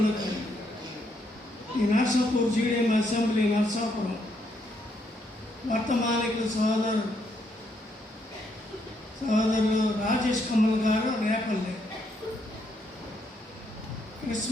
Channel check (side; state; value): both; normal; correlation 0.75